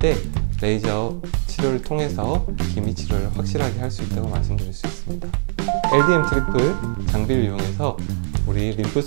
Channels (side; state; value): left; silent; digital silence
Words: 레이저 치료를 통해서 기미 치료를 확실하게 할 수 있다고 말씀드릴 수 있습니다. LDM 트리플 장비를 이용해서 우리 림프